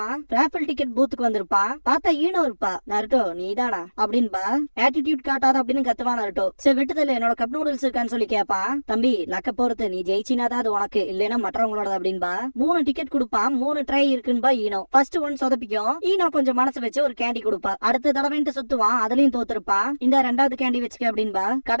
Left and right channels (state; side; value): inverted; both; correlation -1.00